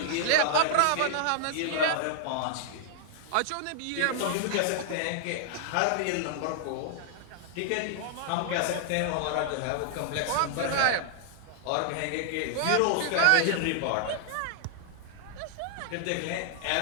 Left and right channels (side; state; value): both; different; correlation -0.01